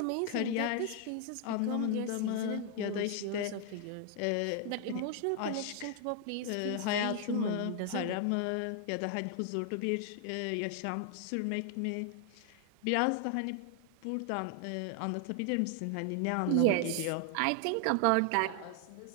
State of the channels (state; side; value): different; both; correlation 0.00